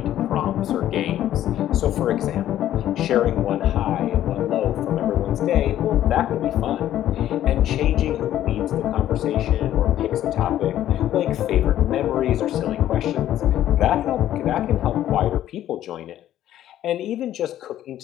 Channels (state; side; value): quieter; right; 12.3 dB